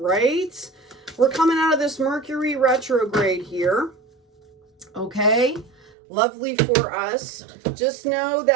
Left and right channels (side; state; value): left; drops out; at 5.9 s